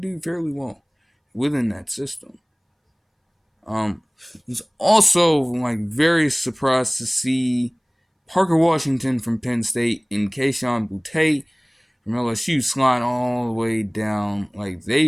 do fairly well within that system. Um, was also like very surprised to see Parker Washington from Penn State and Kayshon Boutte from LSU slide all the way down like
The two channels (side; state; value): both; identical; correlation 1.00